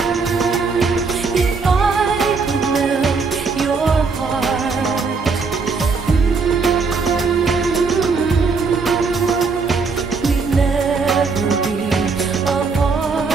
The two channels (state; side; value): quieter; left; 4.6 dB